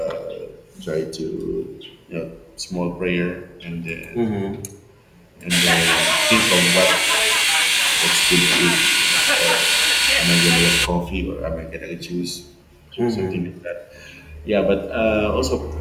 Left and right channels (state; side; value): identical; both; correlation 1.00